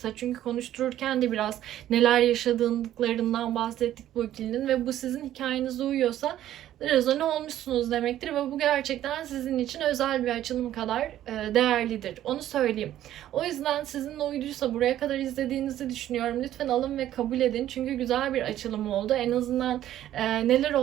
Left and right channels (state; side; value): quieter; left; 12.5 dB